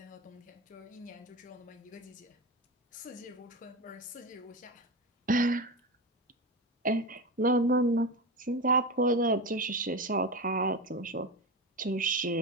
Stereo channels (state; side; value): normal; both; correlation 0.20